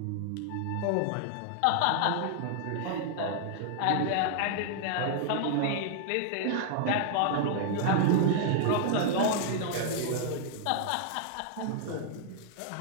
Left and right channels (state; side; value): different; both; correlation 0.00